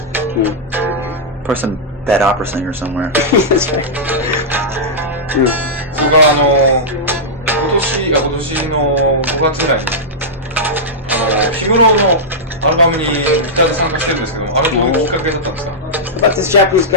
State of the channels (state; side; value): normal; both; correlation -0.10